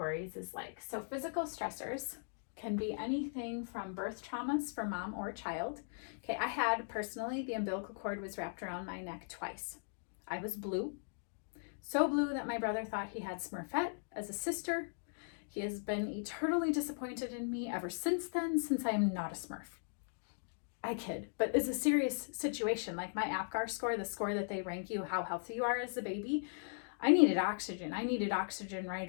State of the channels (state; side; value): silent; right; digital silence